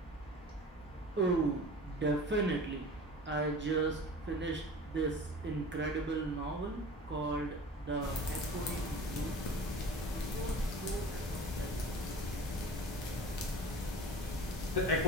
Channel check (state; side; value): normal; both; correlation 0.40